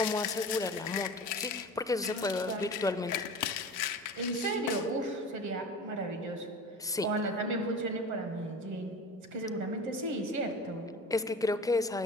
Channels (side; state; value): both; normal; correlation 0.35